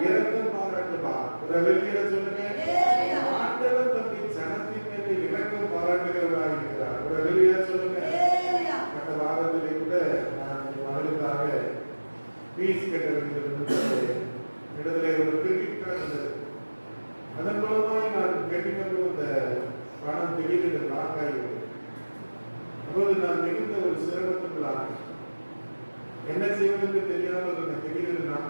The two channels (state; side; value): inverted; both; correlation -1.00